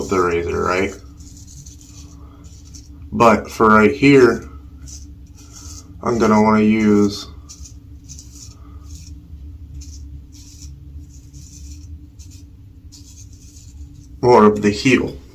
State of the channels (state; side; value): identical; both; correlation 1.00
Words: the razor, right? But for right here, I'm going to want to use more of the heel.